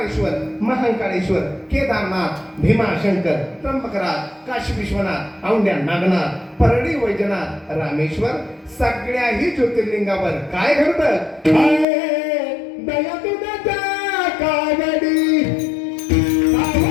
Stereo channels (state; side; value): drops out; right; at 11.9 s